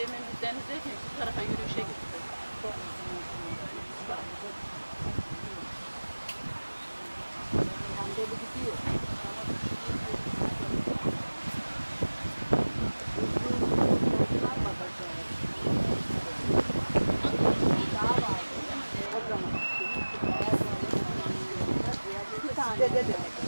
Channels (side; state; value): both; inverted; correlation -1.00